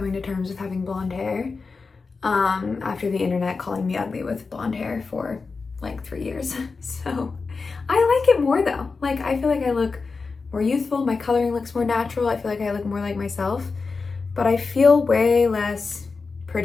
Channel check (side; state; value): right; quieter; 4.4 dB